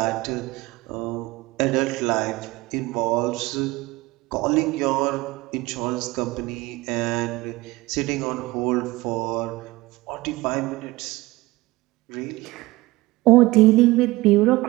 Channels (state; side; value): quieter; left; 20.2 dB